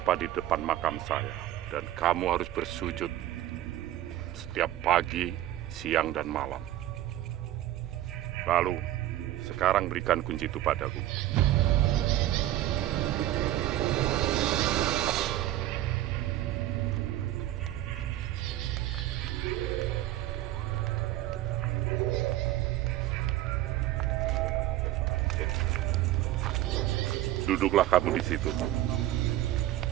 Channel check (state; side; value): quieter; left; 14.2 dB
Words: di depan makam saya. Dan kamu harus bersujud setiap pagi, siang, dan malam. Lalu, sekarang berikan kunci itu padaku. Duduklah kamu di situ.